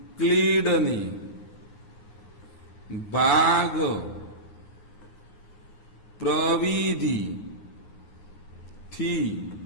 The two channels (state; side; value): late; right; 9.6 ms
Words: ભાગ પ્રવિધિ થી